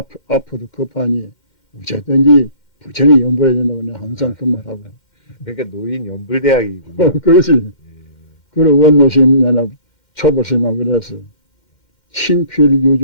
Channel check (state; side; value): late; right; 2.1 ms